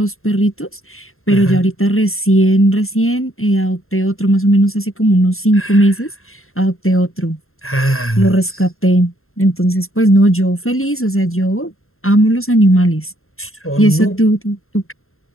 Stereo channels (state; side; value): late; right; 0.61 ms